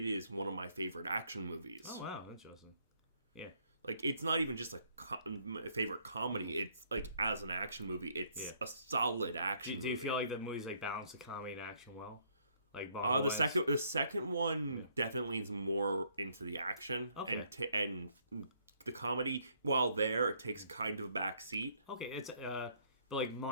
one of my favorite action movies. Oh, wow. Interesting. Yeah. Like, it's not even just a favorite comedy. It's, like, as an action movie, it's a solid action movie. Do you feel like the movies, balance the comedy and action well? The second one definitely is more into the action. Okay. And the comedy, while it takes kind of a back seat. Okay, it's... But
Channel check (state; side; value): inverted; both; correlation -0.68